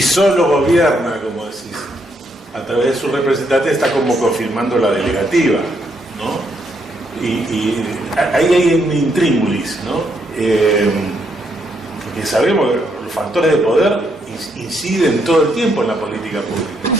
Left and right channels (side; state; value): both; normal; correlation 0.75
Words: solo gobierna, como decís, a través de sus representantes, está como confirmando la delegativa, ¿no? Y ahí hay un intríngulis, ¿no? Porque sabemos que los factores de poder inciden todo el tiempo en la política pública,